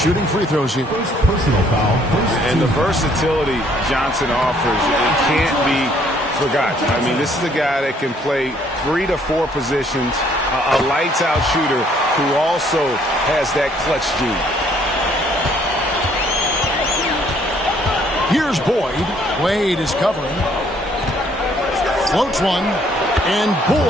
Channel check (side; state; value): both; normal; correlation 0.64